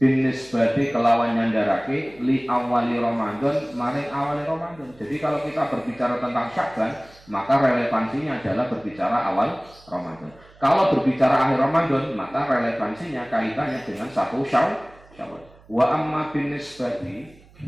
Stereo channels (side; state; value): right; noise; hum, 26 dB below the sound